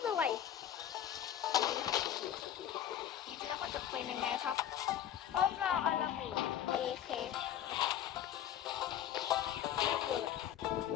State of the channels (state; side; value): quieter; right; 10.6 dB